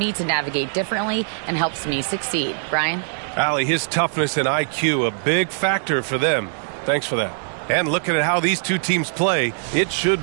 to navigate differently and helps me succeed." Brian? Allie, his toughness and IQ, a big factor for them. Thanks for that. And looking at how these two teams play, it should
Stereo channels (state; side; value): silent; left; digital silence